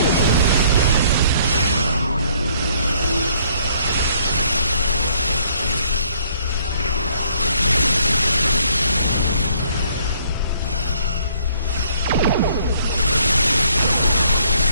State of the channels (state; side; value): inverted; both; correlation -0.63